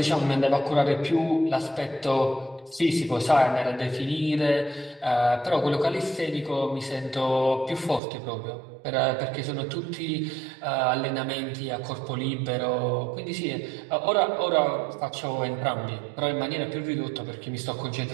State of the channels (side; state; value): left; drops out; at 8.0 s